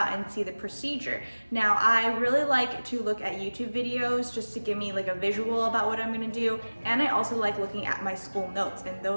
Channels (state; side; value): inverted; both; correlation -1.00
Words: and see the procedure. Now, I really like to look at YouTube videos just to give me like a visual about what I'm gonna do, and I also like looking at my school notes, and